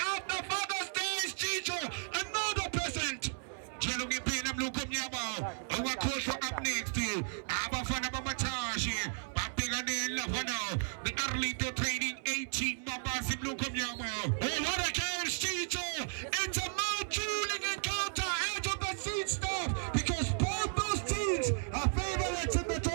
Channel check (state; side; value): silent; left; 55 dB below the other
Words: Father's Day, Chicho. Another present. Jelungi Pena Blue Kumyama, our coach up next to you, Abafana Matashi, Papigane Lavano, the Arlito Training 18 Babas in Blue Kumyama. Oh, what a chance, Chicho! It's a mouth-drooling encounter out of the seat stuff because both those teams are favorites in the